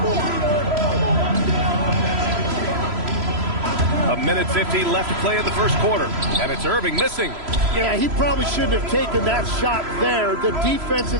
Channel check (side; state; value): left; late; 3.0 ms